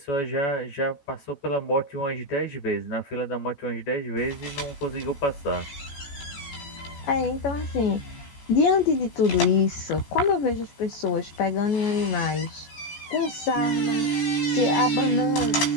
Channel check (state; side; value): late; right; 14 ms